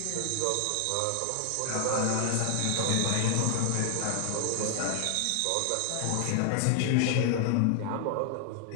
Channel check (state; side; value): different; both; correlation 0.00